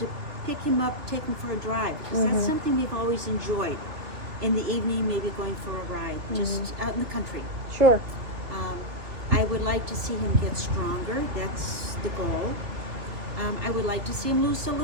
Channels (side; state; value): left; late; 2.9 ms